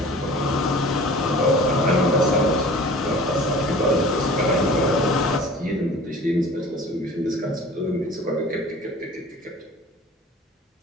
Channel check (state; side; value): normal; both; correlation 0.44